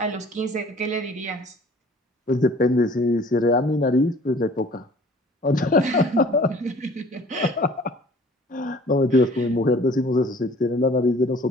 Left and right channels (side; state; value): both; normal; correlation 0.51